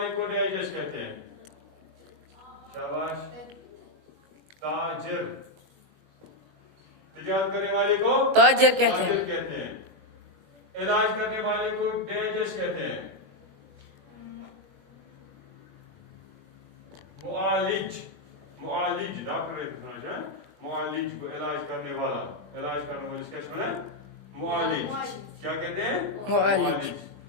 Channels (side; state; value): left; late; 21 ms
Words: को डैश डैश कहते हैं। शाबाश। ताजिर। तिजारत करने वाले को ताजिर कहते हैं। इलाज करने वाले को डैश डैश कहते हैं। मुआलिज। डॉक्टर मुआलिज को इलाज करने वाला, क्या समझा? मुआलिज। क्या कहते हैं? मुआलिज।